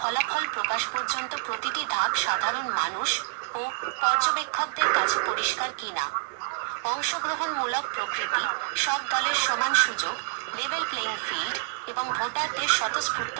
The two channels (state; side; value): silent; left; digital silence